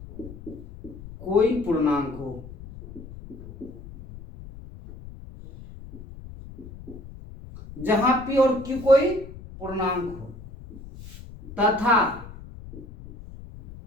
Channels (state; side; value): noise; left; rumble, 15 dB below the sound